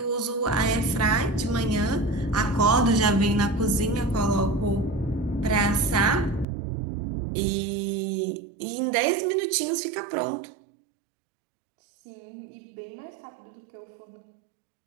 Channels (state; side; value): drops out; left; at 6.5 s